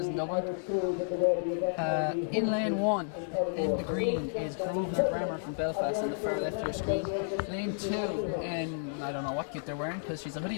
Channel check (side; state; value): right; silent; digital silence